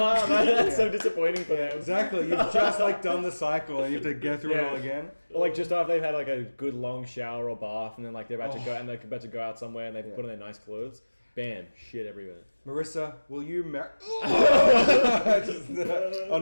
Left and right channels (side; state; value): both; inverted; correlation -1.00